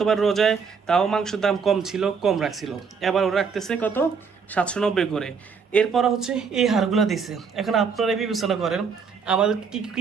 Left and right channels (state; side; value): quieter; left; 5.8 dB